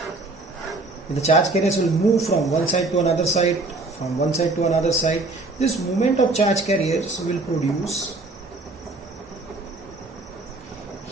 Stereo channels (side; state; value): left; quieter; 3.2 dB